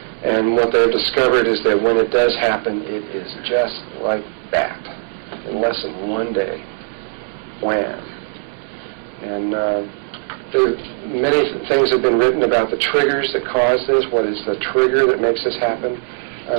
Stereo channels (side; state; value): left; silent; 65 dB below the other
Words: And what they've discovered is that when it does happen, it is just like that. In less than one day. Wham. And many things have been written about the triggers that cause this. What is the trigger that makes this happen?